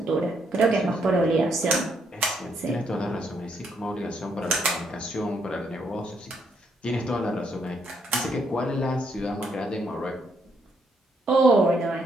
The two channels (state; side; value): normal; both; correlation 0.74